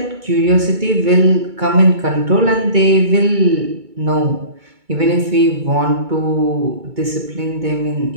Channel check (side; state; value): left; late; 2.2 ms